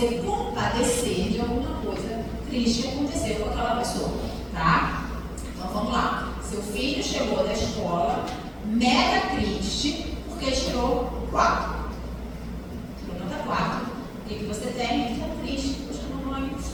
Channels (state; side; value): identical; both; correlation 1.00